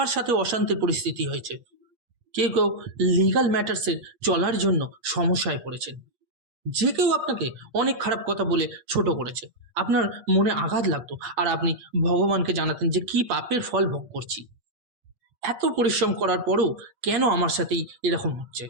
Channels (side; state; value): left; late; 8.5 ms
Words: সাথে অশান্তির পরিস্থিতি হয়েছে, কেউ কেউ লিগাল ম্যাটার্সের চলার জন্য সমস্যায় পড়েছেন। যে কেউ আপনাকে অনেক খারাপ কথা বলে ছোট করেছে, আপনার মনে আঘাত লাগতো, আর আপনি ভগবানকে জানাতেন যে কি পাপের ফল ভোগ করছি, এত পরিশ্রম করার পরও কেন আমার সাথেই এরকম হচ্ছে,